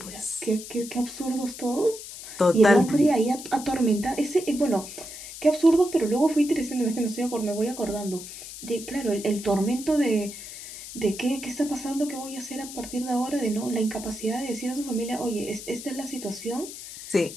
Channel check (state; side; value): noise; left; hiss, 12 dB below the sound